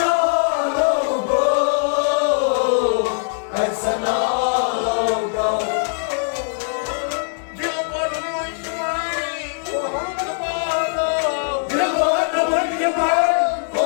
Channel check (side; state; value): right; silent; digital silence